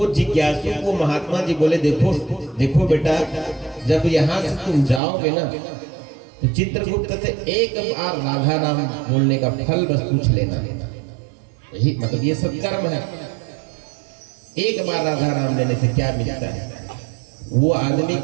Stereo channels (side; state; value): left; drops out; at 5.0 s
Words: जिज्ञासु को महात्मा जी बोले, देखो देखो बेटा जब यहाँ से तुम जाओगे ना तो चित्रगुप्त से एक बार राधा नाम बोलने का फल बस पूछ लेना। यही मतलब ये सब कर्म है। एक बार राधा नाम लेने से क्या मिलता है? वो आदमी